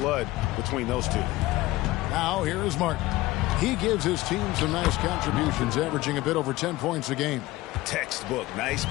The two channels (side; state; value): right; quieter; 18.2 dB